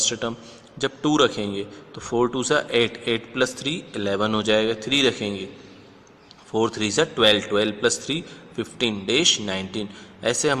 टर्म। जब 2 रखेंगे तो 4 × 2 = 8, 8 + 3 11 हो जाएगा। 3 रखेंगे 4 × 3 = 12, 12 + 3 15 डैश 19। ऐसे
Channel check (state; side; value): identical; both; correlation 1.00